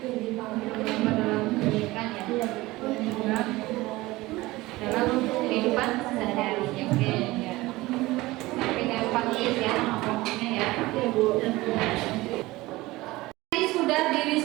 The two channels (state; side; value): quieter; left; 19.6 dB